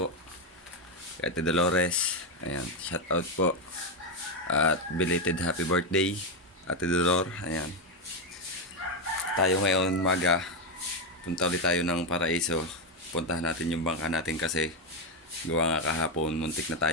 Kay Ate Dolores, ayan, shout out po. At belated happy birthday, Ate Dolor, ayan. Tayo ngayon maga, punta ulit tayo ng Paraiso. Puntahan natin yung bangka natin kasi gawa nga kahapon, muntik na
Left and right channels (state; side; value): normal; both; correlation 0.07